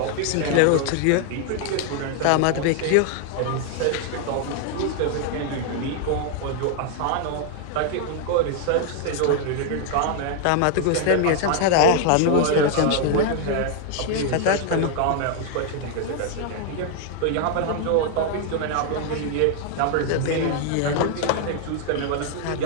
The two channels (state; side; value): different; both; correlation 0.00